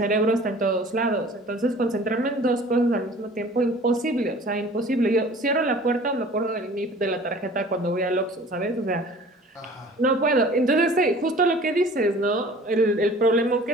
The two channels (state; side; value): normal; both; correlation 0.47